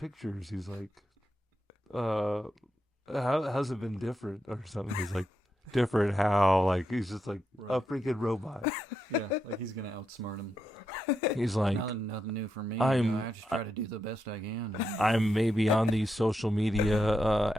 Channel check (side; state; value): both; normal; correlation 0.84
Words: He's like, how's it been different or something? He's like. Different how? Like he's just like a freaking robot. Yeah, like he's gonna outsmart him. He's like nothing new for me. I just try to do the best I can. I'm maybe on these social media